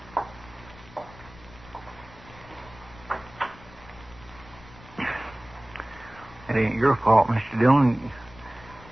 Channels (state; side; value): noise; left; rumble, 21 dB below the sound